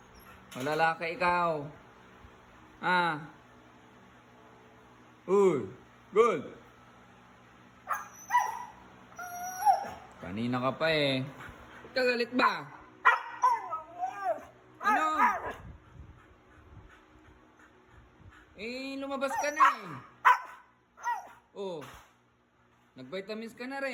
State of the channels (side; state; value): both; identical; correlation 1.00